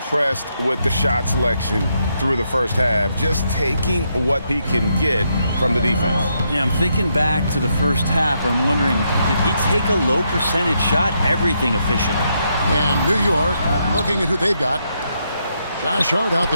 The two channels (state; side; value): inverted; both; correlation -0.79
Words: with the shot selection through the first half, just taking what he can get from the defense. Yeah, I'm thinking back to the first half and wondering, did he take a low percentage shot? Everything efficient. And New York, looking at who they've got. Josh Hart out